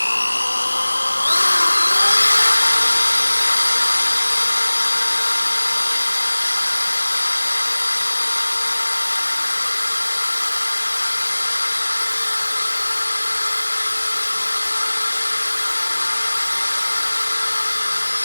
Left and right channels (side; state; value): both; inverted; correlation -1.00